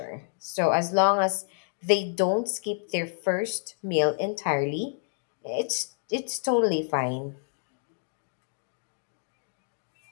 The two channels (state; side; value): silent; right; digital silence